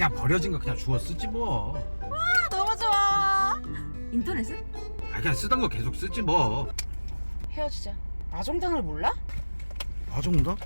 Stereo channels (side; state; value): both; inverted; correlation -1.00